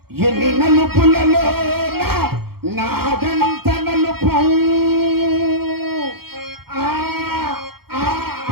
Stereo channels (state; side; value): late; left; 0.95 ms